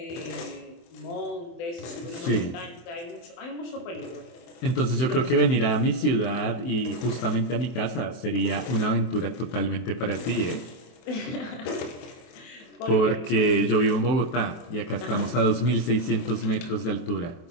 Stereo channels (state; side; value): late; right; 24 ms